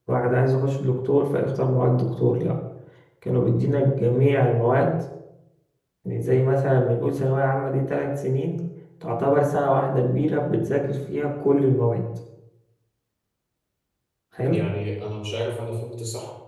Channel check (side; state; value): both; identical; correlation 1.00